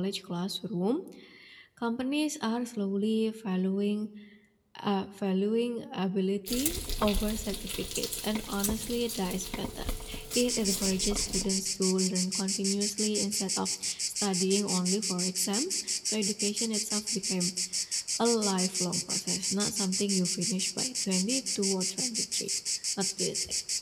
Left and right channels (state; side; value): identical; both; correlation 1.00